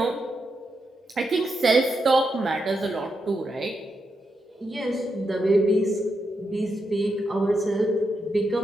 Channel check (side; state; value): both; normal; correlation 0.84